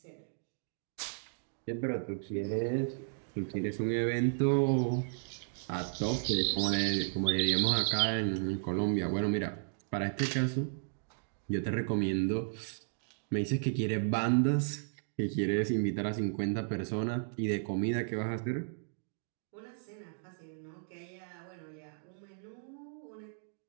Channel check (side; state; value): left; silent; digital silence